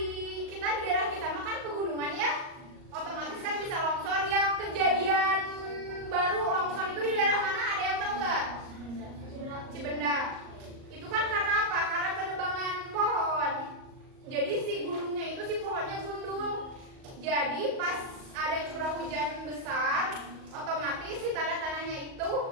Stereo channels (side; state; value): left; late; 38 ms